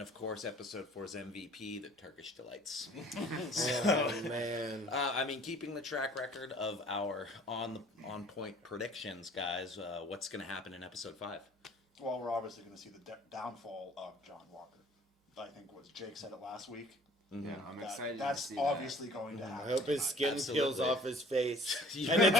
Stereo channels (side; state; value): both; normal; correlation 0.52